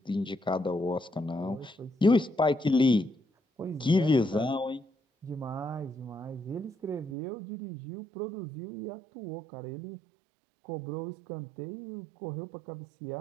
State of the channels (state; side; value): drops out; left; at 7.2 s